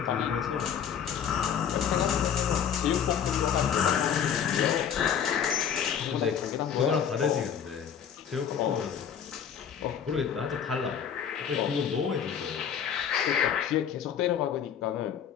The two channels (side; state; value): right; quieter; 8.1 dB